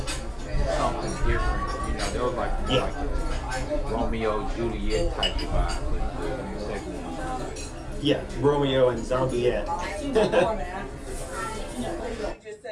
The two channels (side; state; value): both; identical; correlation 1.00